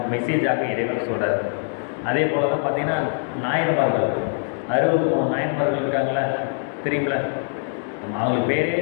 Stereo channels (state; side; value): silent; right; 63 dB below the other